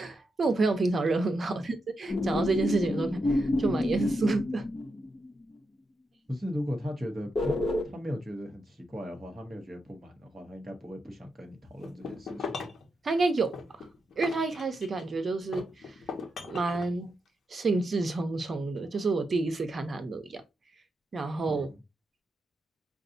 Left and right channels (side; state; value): both; normal; correlation 0.85